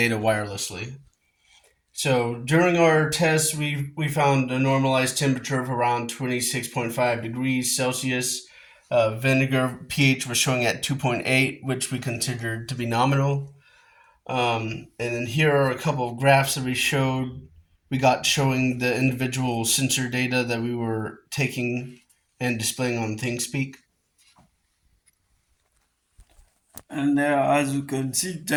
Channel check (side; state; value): both; identical; correlation 1.00